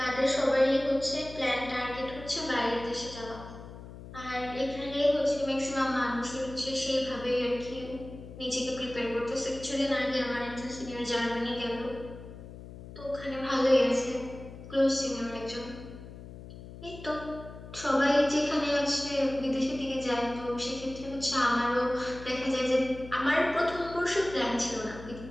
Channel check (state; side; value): noise; left; hum, 14 dB below the sound